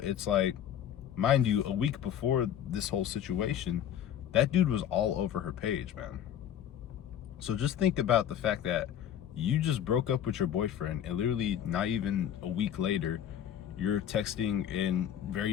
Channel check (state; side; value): quieter; right; 9.9 dB